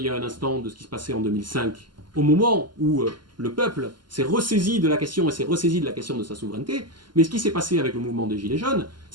y a un instant de ce qui se passait en 2005, au moment où le peuple s'est ressaisi de la question et s'est ressaisi de la question de sa souveraineté, mais ce qui s'est passé avec le mouvement des Gilets jaunes,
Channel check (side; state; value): left; late; 0.71 ms